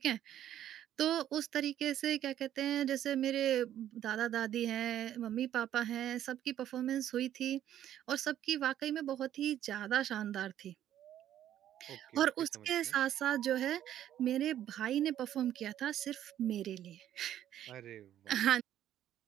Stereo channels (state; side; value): quieter; left; 11.4 dB